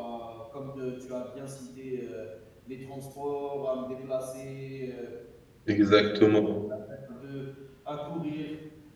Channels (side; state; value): both; identical; correlation 1.00